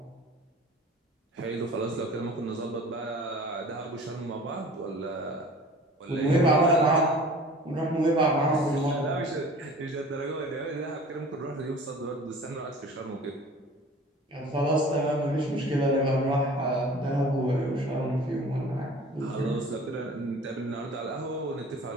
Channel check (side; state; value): both; normal; correlation 0.44